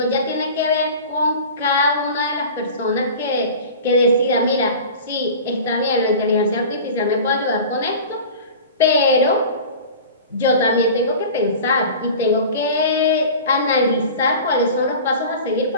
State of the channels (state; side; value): inverted; both; correlation -0.37